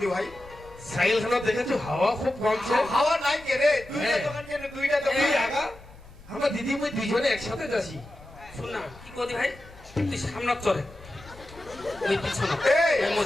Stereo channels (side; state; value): left; noise; rumble, 21 dB below the sound